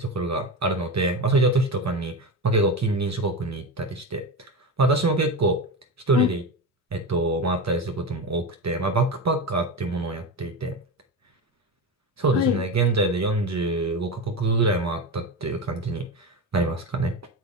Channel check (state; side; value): normal; both; correlation 0.21